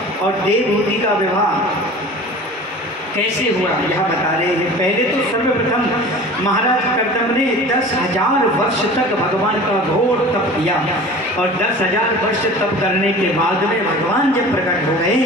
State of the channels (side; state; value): both; normal; correlation 0.40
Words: और देवहूति का विवाह कैसे हुआ यह बता रहे हैं। पहले तो सर्वप्रथम महाराज कर्दम ने 10,000 वर्ष तक भगवान का घोर तप किया। और 10,000 वर्ष तप करने के बाद में भगवान जब प्रकट हो गए